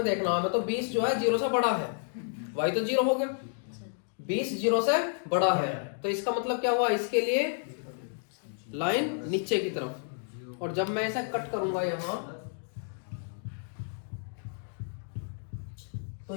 देखना हमें। तो 20 जो है 0 से बड़ा है, y तो 0 हो गया, 20 0 से बड़ा है। तो इसका मतलब क्या हुआ? इसके लिए लाइन नीचे की तरफ। और जब मैं ऐसा कट करूंगा यहाँ, तो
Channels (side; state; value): right; silent; digital silence